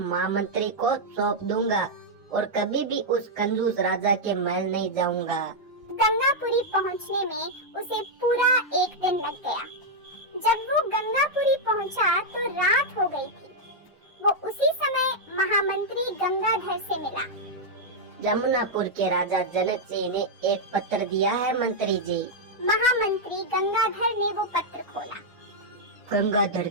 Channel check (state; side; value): normal; both; correlation -0.03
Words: को सौंप दूंगा और कभी भी उस कंजूस राजा के महल नहीं जाऊंगा। गंगापुरी पहुंचने में उसे पूरा 1 दिन लग गया। जब वो गंगापुरी पहुंचा तो रात हो गई थी। वो उसी समय महामंत्री गंगाधर से मिला। जमुनापुर के राजा जनक सिंह ने एक पत्र दिया है मंत्री जी। महामंत्री गंगाधर ने वो पत्र खोला। गंगाधर